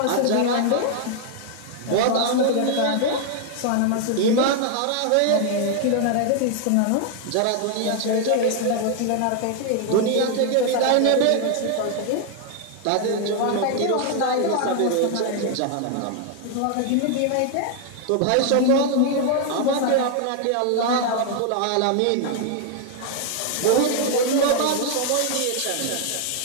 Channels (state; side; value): different; both; correlation 0.00